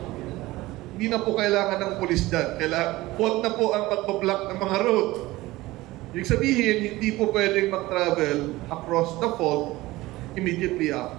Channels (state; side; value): quieter; left; 18.8 dB